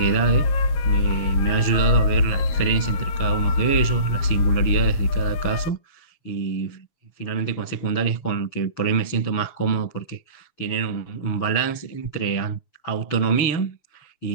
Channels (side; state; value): right; late; 6.9 ms